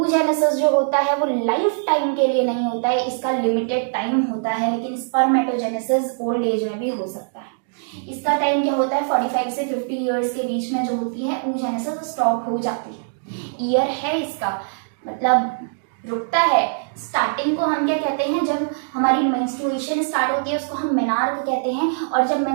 जो होता है वो लाइफ टाइम के लिए नहीं होता है, इसका लिमिटेड टाइम होता है, लेकिन स्पर्मेटोजेनेसिस ओल्ड एज में भी हो सकता है। इसका टाइम क्या होता है, 45 से 50 ईयर्स के बीच में जो होती है oogenesis स्टॉप हो जाती है। ईयर है इसका, मतलब रुकता है। स्टार्टिंग को हम क्या कहते हैं, जब हमारी मेंस्ट्रुएशन स्टार्ट होती है उसको हम मेनार्क कहते हैं, और जब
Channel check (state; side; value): silent; left; digital silence